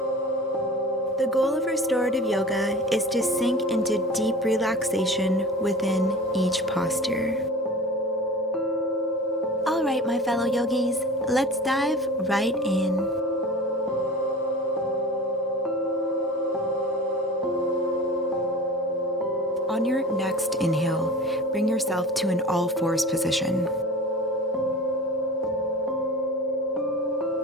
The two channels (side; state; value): both; normal; correlation 0.38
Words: The goal of restorative yoga is to sink into deep relaxation within each posture. All right, my fellow yogis, let's dive right in. On your next inhale, bring yourself to an all-fours position.